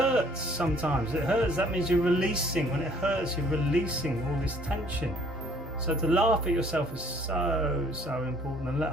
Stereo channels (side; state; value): both; normal; correlation 0.59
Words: sometimes. It hurts, that means you're releasing. When it hurts, you're releasing all this tension. So to laugh at yourself is so important, and let